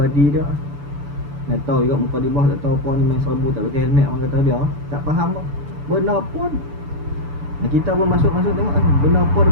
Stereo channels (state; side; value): late; left; 6.9 ms